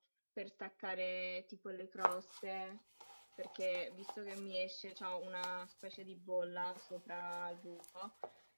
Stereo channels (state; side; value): inverted; both; correlation -1.00